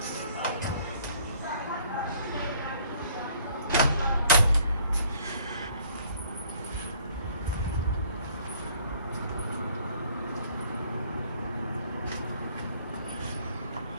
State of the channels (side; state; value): both; inverted; correlation -0.59